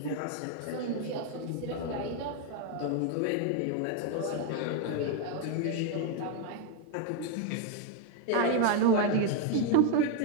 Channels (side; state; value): both; different; correlation 0.01